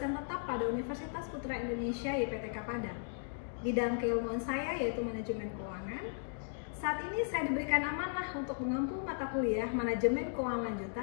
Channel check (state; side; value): silent; right; digital silence